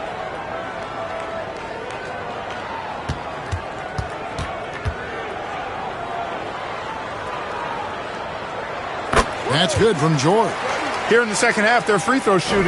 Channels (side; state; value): both; identical; correlation 1.00